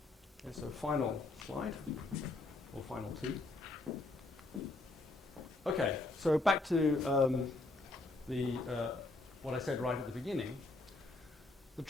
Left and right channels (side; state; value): right; quieter; 3.1 dB